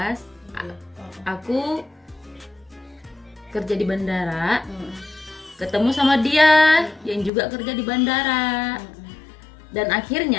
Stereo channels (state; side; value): drops out; right; at 7.3 s